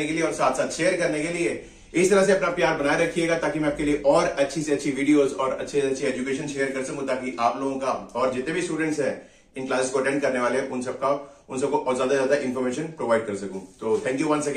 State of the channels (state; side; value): identical; both; correlation 1.00